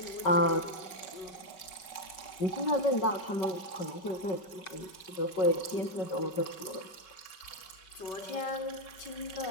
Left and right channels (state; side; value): late; right; 5.3 ms